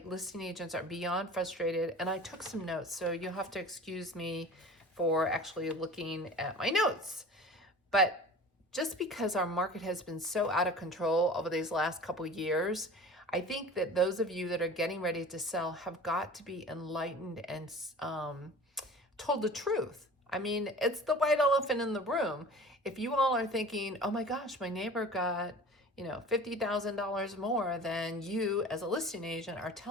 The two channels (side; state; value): both; normal; correlation 0.40